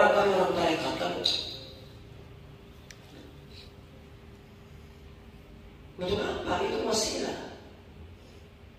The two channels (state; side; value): identical; both; correlation 1.00